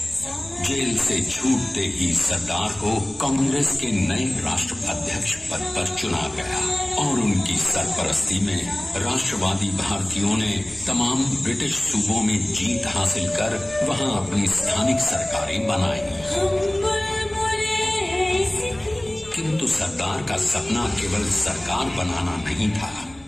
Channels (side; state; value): left; noise; rumble, 24 dB below the sound